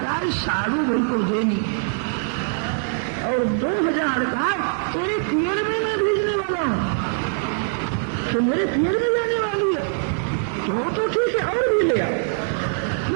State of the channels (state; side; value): silent; left; digital silence